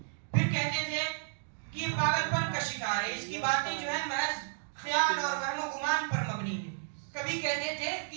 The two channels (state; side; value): silent; left; digital silence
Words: پھر کہتے تھے کہ یہ پاگل پن کا شکار ہے، اس کی باتیں جو ہے محض خیال اور وہم و گمان پر مبنی ہے. کبھی کہتے تھے کہ